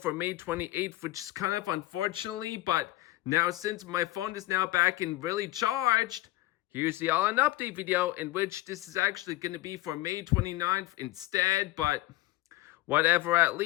May 28th, which is kind of unfortunately, but now since my phone is now back and really charged, here's the all-in update video, in which this is actually going to be for May 29th instead, but whatever at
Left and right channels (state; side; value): quieter; right; 17.2 dB